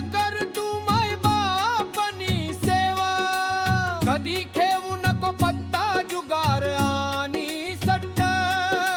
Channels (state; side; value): identical; both; correlation 1.00